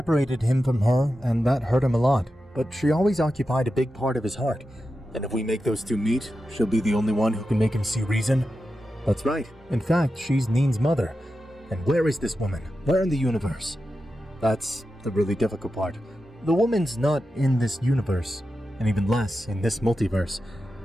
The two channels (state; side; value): normal; both; correlation 0.91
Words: him from her, and that hurt him a lot, but she always occupied a big part of his heart. And if we make those two meet, she'll be the only one who can make him see reason. That's right. In fact, she's Neen's mother. And where is this woman? Where in the universe? That's the really difficult part. The woman's not in this universe, and even less in this multiverse.